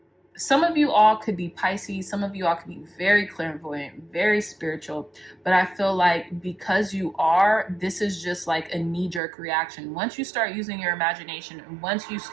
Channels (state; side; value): drops out; left; at 9.2 s